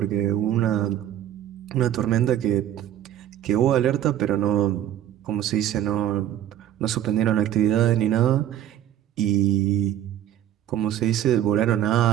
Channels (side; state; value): left; quieter; 11.6 dB